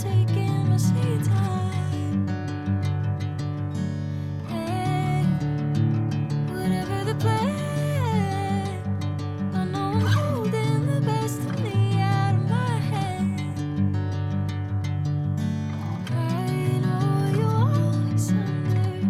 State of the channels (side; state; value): both; identical; correlation 1.00